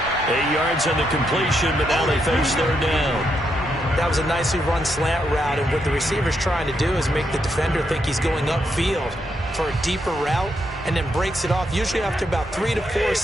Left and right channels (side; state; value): both; normal; correlation 0.79